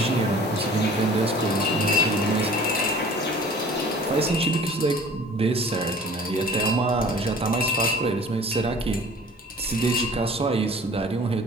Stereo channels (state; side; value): normal; both; correlation 0.46